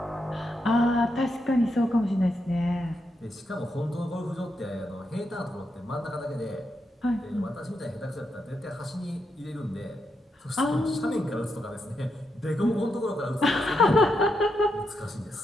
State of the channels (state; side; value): normal; both; correlation 0.82